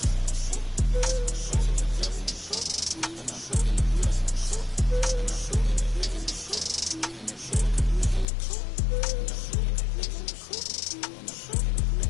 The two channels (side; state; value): right; drops out; at 8.2 s